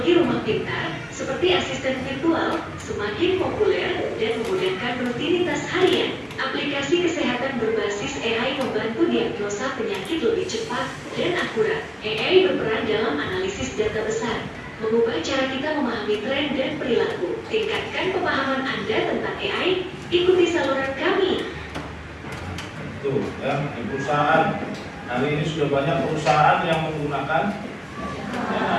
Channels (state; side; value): identical; both; correlation 1.00